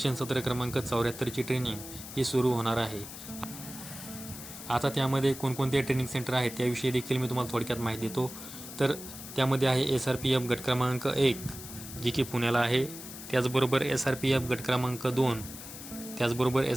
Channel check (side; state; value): left; noise; hiss, 12 dB below the sound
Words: सत्र क्रमांक 74 ची ट्रेनिंग ही सुरू होणार आहे. आता त्यामध्ये कोणकोणते ट्रेनिंग सेंटर आहेत त्याविषयी देखील मी तुम्हाला थोडक्यात माहिती देतो. तर त्यामध्ये आहे SRPF गट क्रमांक 1 जी की पुण्याला आहे, त्याचबरोबर SRPF गट क्रमांक 2, त्याचबरोबर